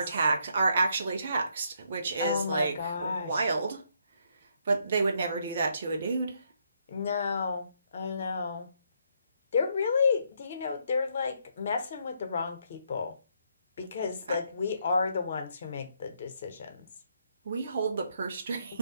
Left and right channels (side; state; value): both; inverted; correlation -0.73